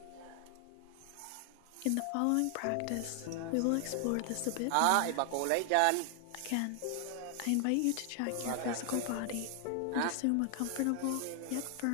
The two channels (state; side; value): different; both; correlation 0.00